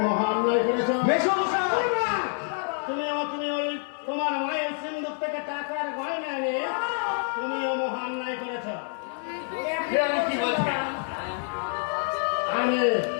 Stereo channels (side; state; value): right; silent; 55 dB below the other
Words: মহান অন্যায় করেছো। মেসমশাই! তুমি ওই তোমার মায়ের সিন্দুক থেকে টাকার গয়না নিয়ে তুমিও মহান অন্যায় করেছো। আমি কি বলছি?